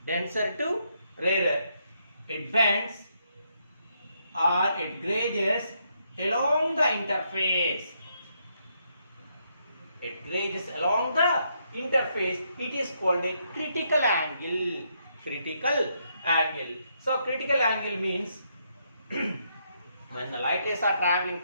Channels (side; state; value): both; inverted; correlation -0.76